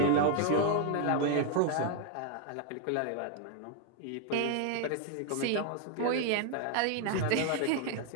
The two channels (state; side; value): different; both; correlation 0.00